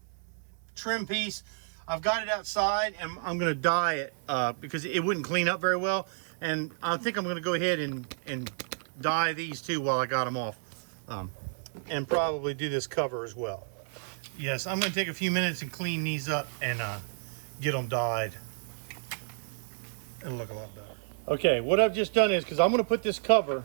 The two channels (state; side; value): silent; left; digital silence